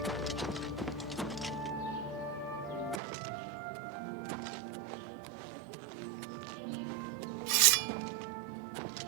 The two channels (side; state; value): left; drops out; at 3.0 s